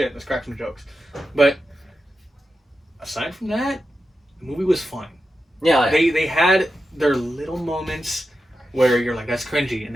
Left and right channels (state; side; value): normal; both; correlation 0.90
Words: Let's crack some jokes. But aside from that, the movie was fun. Yeah, like, They had their little moments where you're like, that's cringy, and